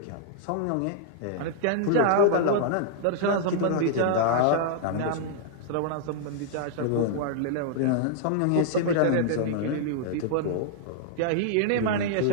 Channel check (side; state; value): both; different; correlation -0.01